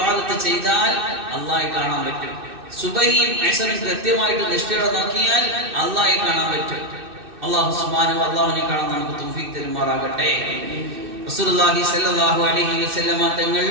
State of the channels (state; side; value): late; left; 2.6 ms